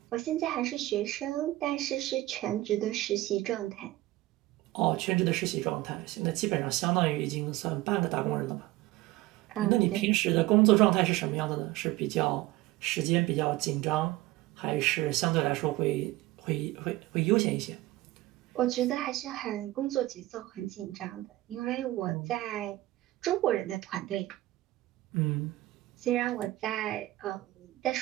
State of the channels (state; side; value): quieter; left; 17.7 dB